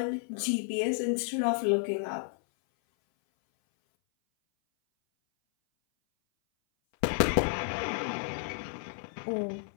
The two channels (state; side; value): silent; right; 57 dB below the other